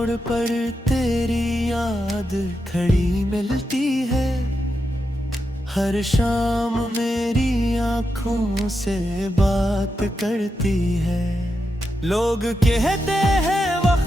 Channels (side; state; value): both; normal; correlation 0.86